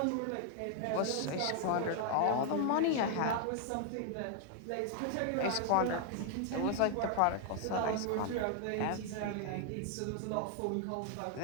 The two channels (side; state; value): both; different; correlation 0.00